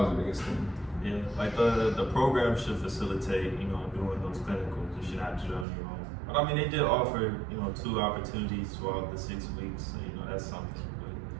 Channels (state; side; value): drops out; left; at 5.7 s